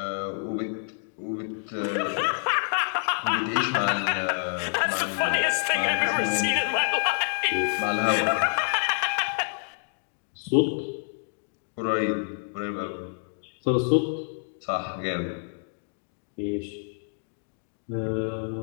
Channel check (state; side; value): silent; right; digital silence